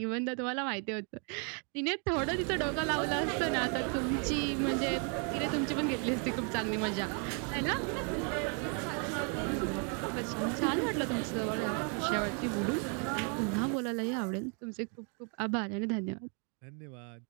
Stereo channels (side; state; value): left; quieter; 38.7 dB